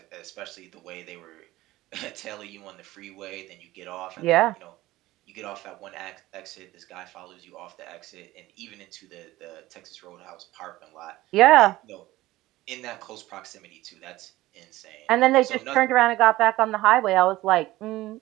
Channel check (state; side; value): quieter; left; 17.3 dB